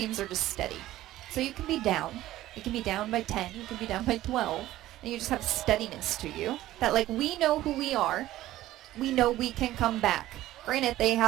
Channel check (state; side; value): quieter; left; 15.0 dB